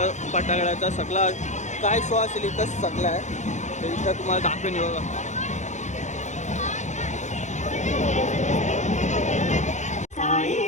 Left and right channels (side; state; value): right; late; 0.34 ms